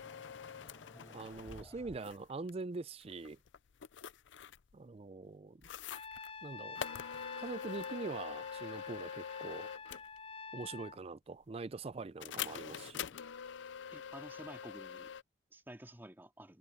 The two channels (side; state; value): both; normal; correlation 0.09